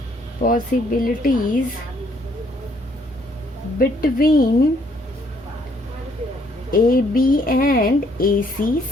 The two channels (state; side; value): normal; both; correlation 0.67